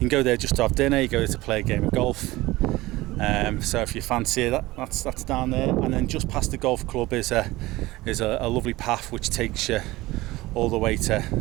go there just to have dinner. You go there to play a game of golf. So if you fancy it, that's down there. And then just past the golf club is a lovely path which takes you all the way to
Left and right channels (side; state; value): left; quieter; 19.1 dB